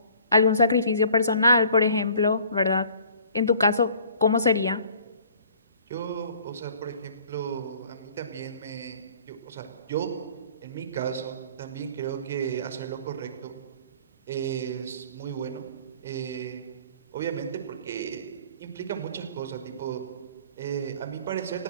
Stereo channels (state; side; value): inverted; both; correlation -0.52